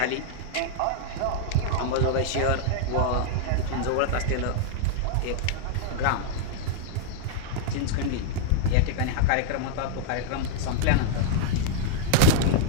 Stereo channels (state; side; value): different; both; correlation -0.01